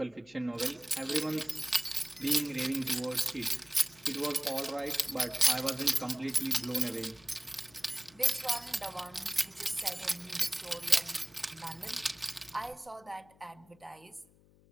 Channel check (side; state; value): left; noise; hum, 28 dB below the sound